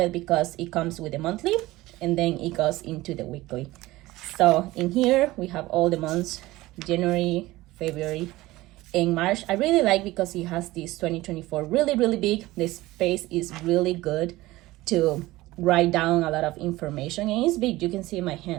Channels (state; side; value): quieter; left; 18.4 dB